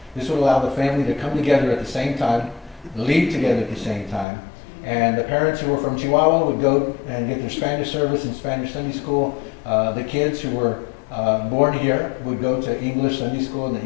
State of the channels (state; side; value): drops out; right; at 4.2 s